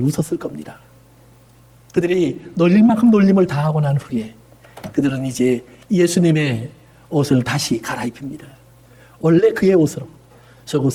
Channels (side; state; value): both; identical; correlation 1.00